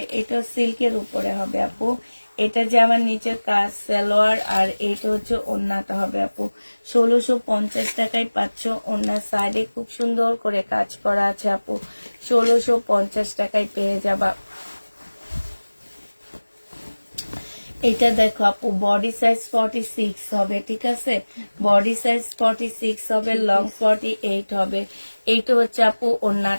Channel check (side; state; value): both; inverted; correlation -1.00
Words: এটা সিল্কের উপরে হবে আপু। এটা জামার নিচের কাজ সালোয়ার, আর এইটা হচ্ছে ওড়নাটা হবে আপু। 1650 টাকায় পাচ্ছ। ওড়নার সাইডে খুব সুন্দর করে কাজ করা আছে আপু। 1650 টাকায় পেয়ে যাবা। এটা দেখো আপু, বডি সাইজ 46 হবে, ঠিক আছে। বডি সাইজ 46 হবে, লং 48 হবে। এইটা হচ্ছে আপু